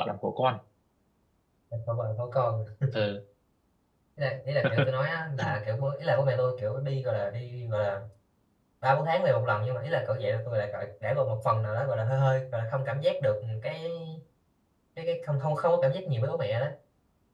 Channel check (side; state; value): both; identical; correlation 1.00